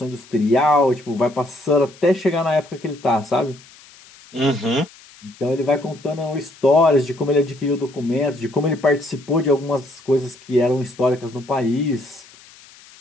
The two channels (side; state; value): left; noise; hiss, 24 dB below the sound